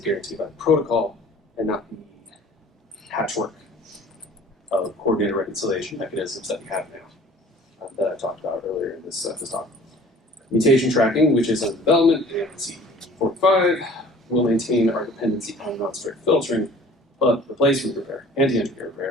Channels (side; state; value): both; normal; correlation 0.49